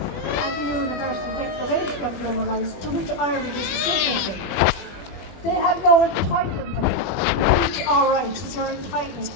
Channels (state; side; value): late; right; 20 ms